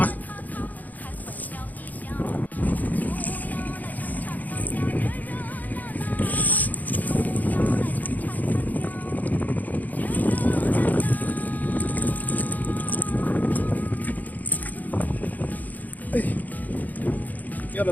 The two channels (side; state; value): right; late; 0.081 ms